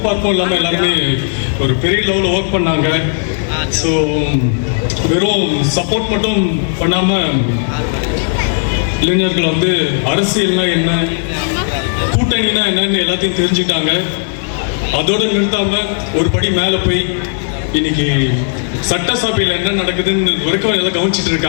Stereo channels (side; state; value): right; silent; digital silence